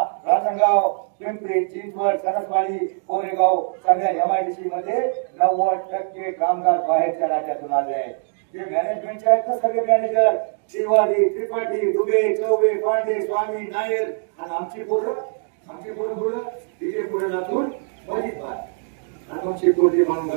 राजनगाव पिंपरी चिंचवड सरसवाडी कोरेगाव सगळ्या MIDC मध्ये 90% कामगार बाहेरच्या राज्यातून आले आहेत. जे मॅनेजमेंटचे आहेत ना सगळे मॅनेजर शिवाजी त्रिपाठी दुबे चौबे पांडे स्वामी नायर आणि आमची पोरं तिथे पुढे जातून बरीच बाहेर आणि मग शिकवटी म्हणून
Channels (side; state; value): left; silent; 64 dB below the other